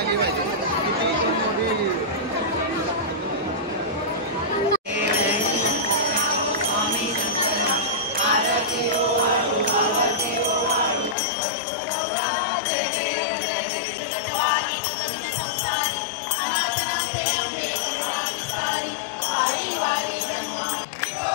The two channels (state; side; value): drops out; right; at 11.2 s